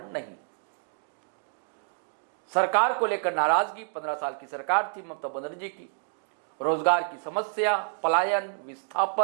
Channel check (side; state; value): left; silent; digital silence